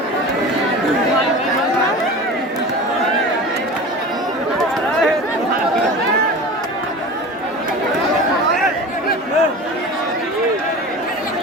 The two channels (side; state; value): both; normal; correlation 0.34